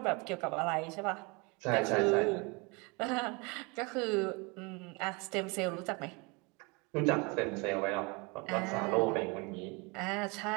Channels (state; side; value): quieter; left; 28.5 dB